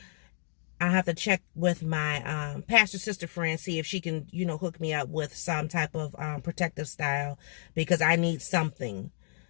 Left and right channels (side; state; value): right; silent; digital silence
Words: I have to check with my pastor sister friend, see if she can, you know, hook me up with some type of protective style, because I need something.